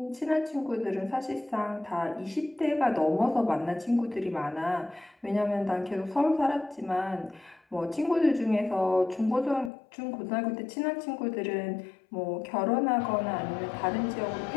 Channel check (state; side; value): drops out; right; at 9.7 s